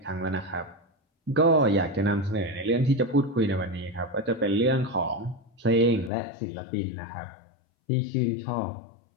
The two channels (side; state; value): right; drops out; at 6.1 s